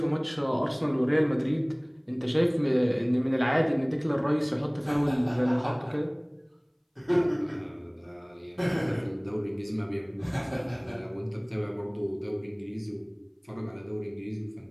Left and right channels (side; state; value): both; identical; correlation 1.00